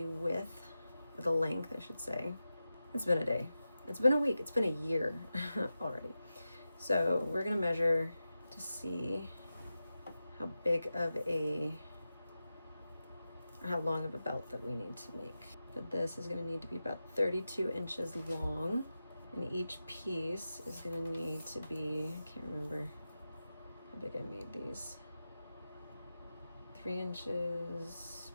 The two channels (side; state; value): both; inverted; correlation -0.92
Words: width, or the length, I should say. It's been a day. It's been a week. It's been a year already. So we're gonna measure to see how big of a, or how long of a belt that we need to make. But this is gonna need to be about 32 inches long, and each piece is gonna need to be, I can't remember how big I made these, 3 inches